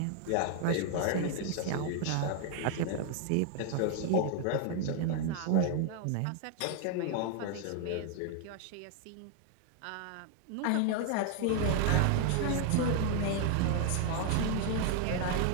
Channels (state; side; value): different; both; correlation 0.00